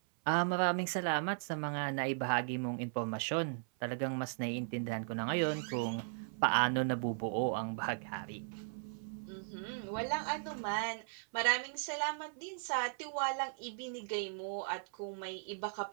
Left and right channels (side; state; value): left; silent; 53 dB below the other